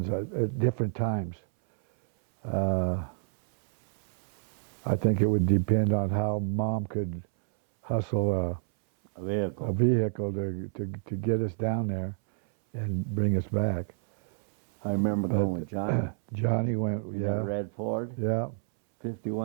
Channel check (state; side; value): silent; left; 59 dB below the other